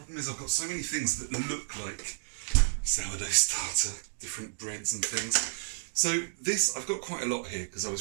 is I've got so many things that look like sourdough starter, different breads and things. So this, I've got quite a lot here because I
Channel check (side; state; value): left; silent; digital silence